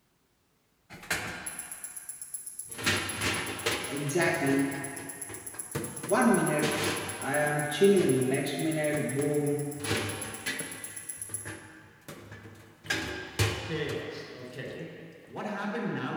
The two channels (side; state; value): both; identical; correlation 1.00